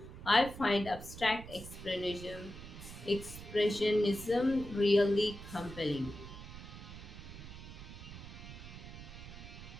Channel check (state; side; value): noise; right; rumble, 12 dB below the sound